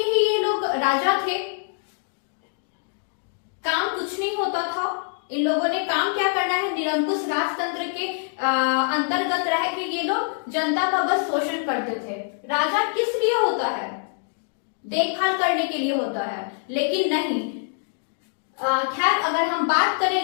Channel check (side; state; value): right; silent; 62 dB below the other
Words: ही ये लोग राजा थे, काम कुछ नहीं होता था। इन लोगों ने काम क्या करना है, निरंकुश राजतंत्र के अंतर्गत रह के ये लोग जनता का बस शोषण करते थे। राजा किस लिए होता है, देखभाल करने के लिए होता है, लेकिन नहीं। खैर, अगर हम बात करें